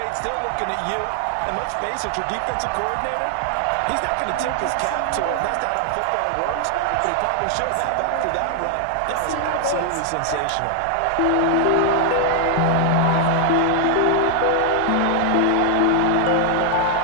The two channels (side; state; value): both; different; correlation 0.00